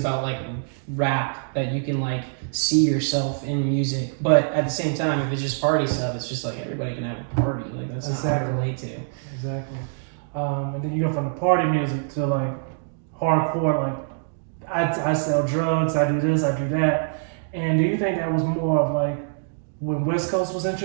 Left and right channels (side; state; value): left; silent; digital silence